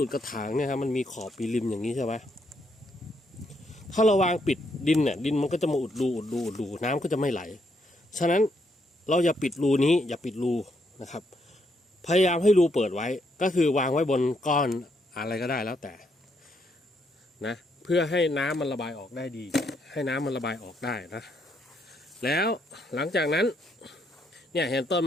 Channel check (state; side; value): normal; both; correlation 0.75